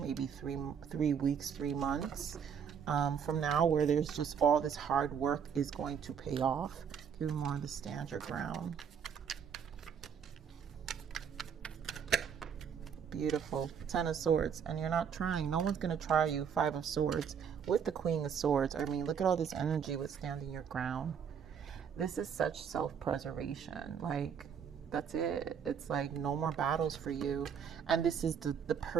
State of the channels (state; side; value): quieter; left; 7.4 dB